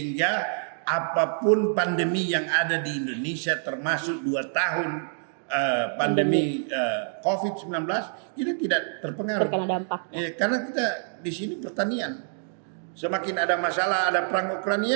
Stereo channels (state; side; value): silent; left; digital silence